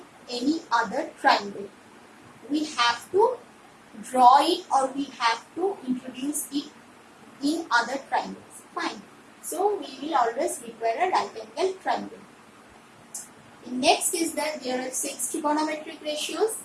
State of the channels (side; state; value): both; identical; correlation 1.00